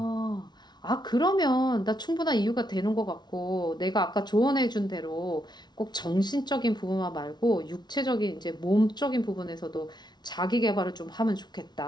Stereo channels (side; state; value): right; late; 0.20 ms